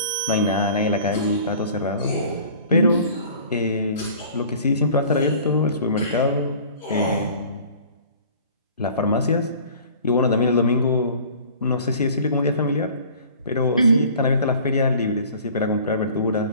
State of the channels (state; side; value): inverted; both; correlation -0.47